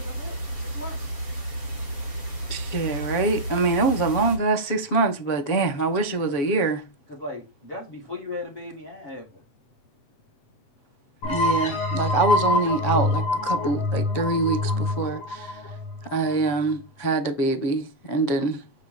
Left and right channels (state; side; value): late; right; 7.1 ms